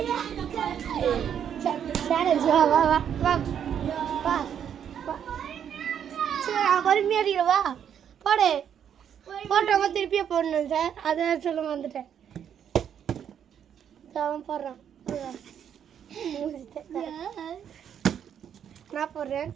சேலஞ்ச். வா வா வா வா வா வா. சரி, பொறுமையாக அடிக்கிறேன். வா போடு. போட்டவங்க திருப்பியே போடணும் சார், அதை சொல்ல வந்துட்டேன். அவன் போடுறான். நான் போடுறேன்.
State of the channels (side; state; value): left; quieter; 8.8 dB